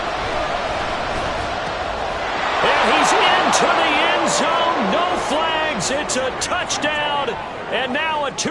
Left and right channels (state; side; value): identical; both; correlation 1.00